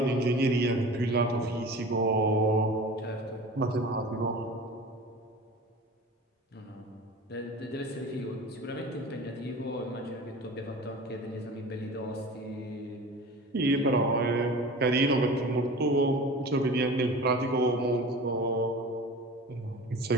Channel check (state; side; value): normal; both; correlation 0.38